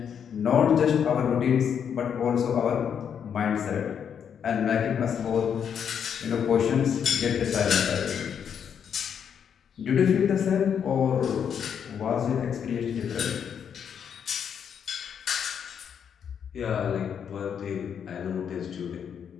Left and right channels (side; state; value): right; quieter; 7.9 dB